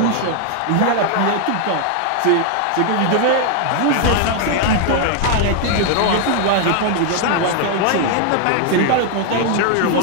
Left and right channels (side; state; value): both; different; correlation 0.00